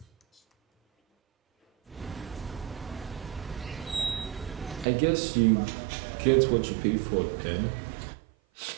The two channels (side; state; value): left; drops out; at 4.9 s